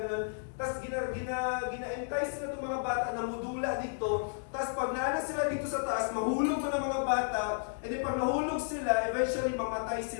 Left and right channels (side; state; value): right; silent; digital silence